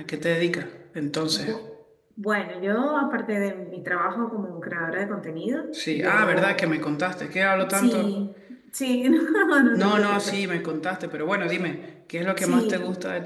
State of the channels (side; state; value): both; identical; correlation 1.00